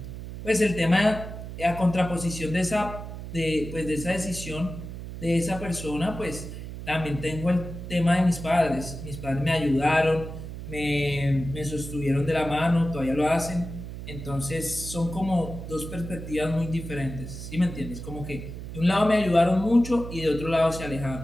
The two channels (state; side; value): noise; right; hum, 9 dB below the sound